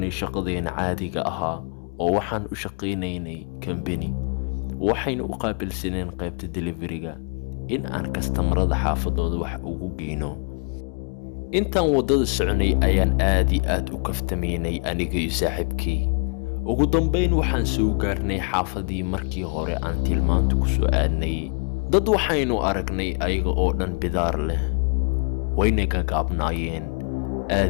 shaqadeena caadiga ahaa oo waxaan u shaqaynaynay company. waxayna u qaabilsaneen qaybta delivery-ga in aan kastamarada xaafadooda wax ugu geyno. intaan wadada soconay ayaan aad iyo aad u kaftamaynay aniga iyo saaxiibkay. ugu dambayn waxaan soo gaarnay xaafadii markii hore aan tilmaanta ku soo aadnay. dad waxaynu aragnay ayaga oo dhan bidaar leh, wayna gagaabnaayeen.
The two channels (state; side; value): quieter; right; 37.9 dB